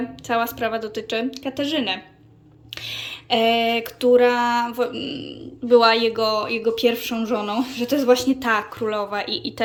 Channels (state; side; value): identical; both; correlation 1.00